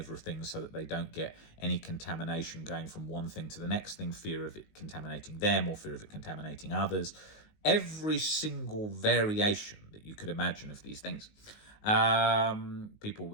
so that they don't get any contamination going from one thing to the next thing, fear of it contaminating them or fear of it contaminating others. Every single variation that you could imagine of these things. People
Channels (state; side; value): late; right; 19 ms